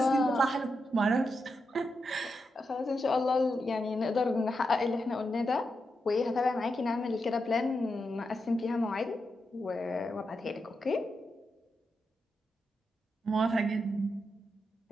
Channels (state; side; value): normal; both; correlation 0.86